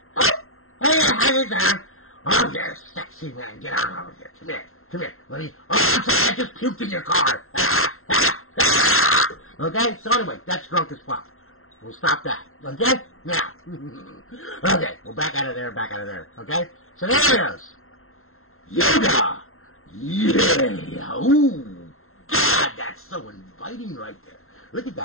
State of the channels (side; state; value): right; late; 0.62 ms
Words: down. Oh, you're a sexy man. Get on over here. Come here. Let me... Oh, I'm sorry, I just puked in your car. Okay, so anyway, that's drunk as fuck. We'll stop that. Okay? Now. Okay, we're back out of there, okay? So there it is. Yoga! Yeah! Ooh! God, that's so inviting right there. Look at